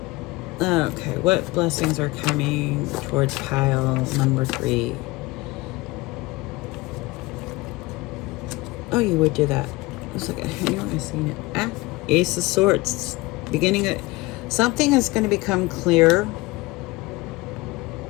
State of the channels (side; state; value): right; quieter; 21.8 dB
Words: Okay, what blessings are coming towards pile number 3? Oh, you would do that. I was like, I know I've seen it. Ace of Swords. Beginning of something is going to become clear.